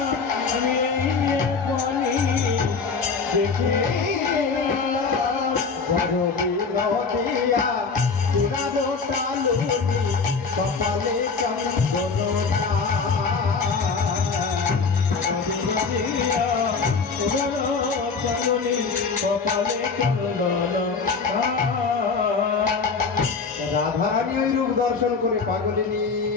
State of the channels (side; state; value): right; quieter; 4.9 dB